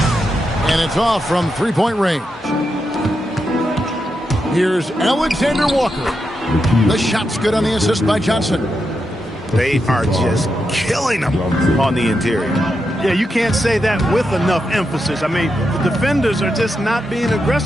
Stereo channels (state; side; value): normal; both; correlation 0.85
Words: And it's off from three-point range. Here's Alexander Walker. The shot's good on the assist by Johnson. They are just killing them on the interior. Yeah, you can't say that with enough emphasis. I mean, the defenders are just not being